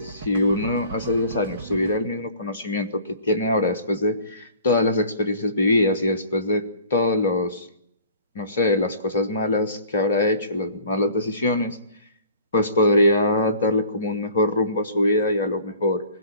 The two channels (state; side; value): inverted; both; correlation -0.49